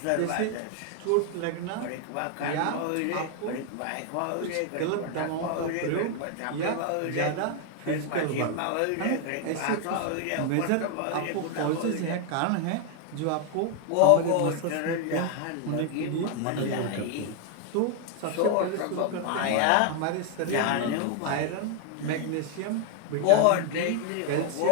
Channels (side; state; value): both; different; correlation 0.00